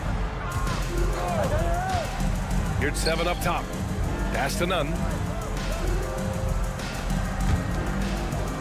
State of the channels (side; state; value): both; identical; correlation 1.00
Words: Yurtseven up top. Pass to Nunn.